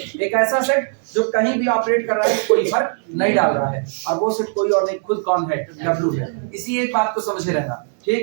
ऐसा सेट जो कहीं भी ऑपरेट कर रहा है, कोई फर्क नहीं डाल रहा है, और वो सेट कोई और नहीं, खुद कौन है? W है। इसी एक बात को समझे रहना,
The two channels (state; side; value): silent; left; 57 dB below the other